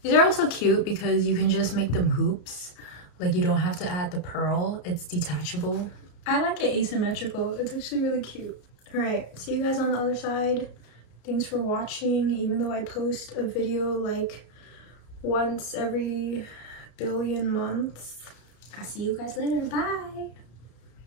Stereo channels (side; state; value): right; late; 34 ms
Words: These are also cute because you can just make them hoops. Like you don't have to add the pearl. It's detachable. I like it asymmetrical. It's actually really cute. Alright, see you guys on the other side. Thanks for watching. Even though I post a video like once every billion months. I'll see you guys later. Bye.